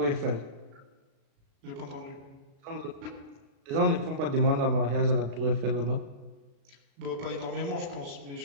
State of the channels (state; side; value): late; left; 36 ms